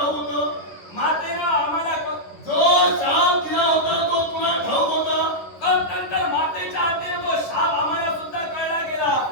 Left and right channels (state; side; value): late; right; 10 ms